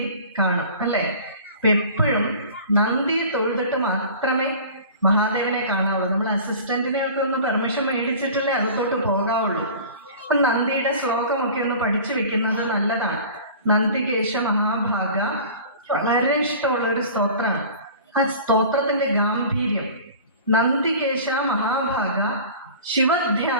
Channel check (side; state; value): both; inverted; correlation -0.41